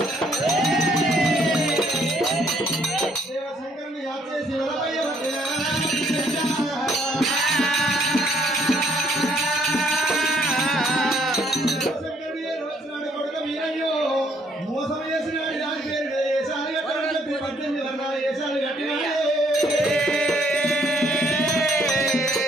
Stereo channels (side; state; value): both; normal; correlation 0.66